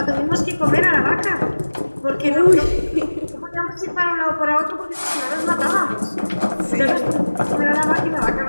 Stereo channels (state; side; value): inverted; both; correlation -1.00